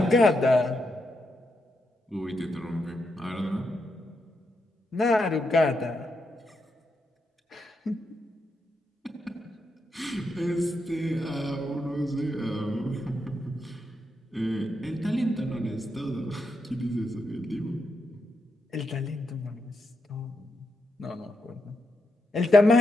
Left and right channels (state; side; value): normal; both; correlation 0.83